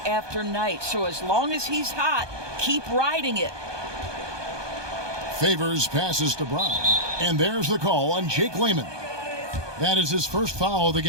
after night. So as long as he's hot, keep riding it. Favors passes to Brown. And there's the call on Jake Layman. That is his first foul of the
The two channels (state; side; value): late; left; 1.2 ms